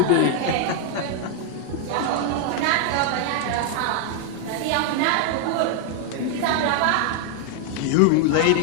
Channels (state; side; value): different; both; correlation 0.00